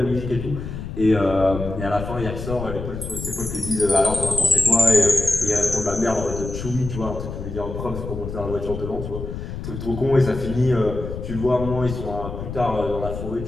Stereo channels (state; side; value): noise; left; rumble, 7 dB below the sound